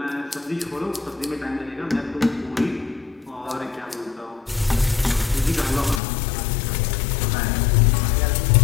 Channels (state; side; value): drops out; right; at 6.0 s